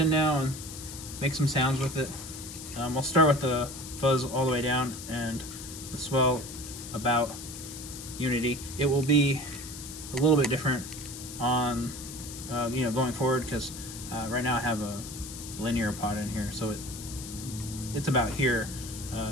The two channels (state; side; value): noise; left; hiss, 11 dB below the sound